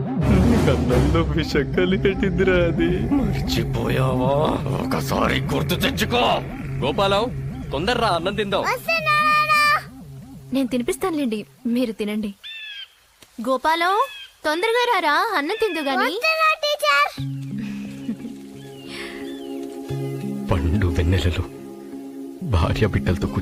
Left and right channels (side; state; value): both; identical; correlation 1.00